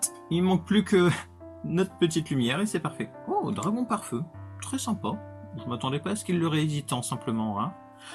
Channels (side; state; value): both; identical; correlation 1.00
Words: Il manque plus que notre petite lumière et c'est parfait. Oh, dragon par feu. très sympa. Je m'attendais pas à ce qu'il le réédite tant simplement. Hein.